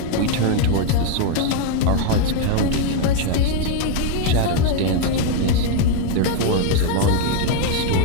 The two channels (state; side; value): different; both; correlation 0.01